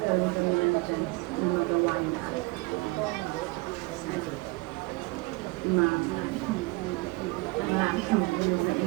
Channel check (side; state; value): left; quieter; 24.7 dB